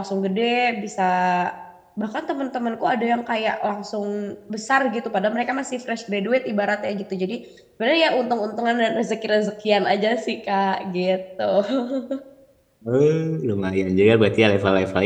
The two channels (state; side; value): identical; both; correlation 1.00